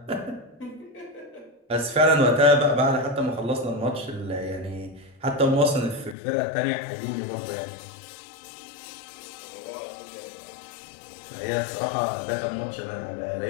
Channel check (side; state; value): right; drops out; at 6.2 s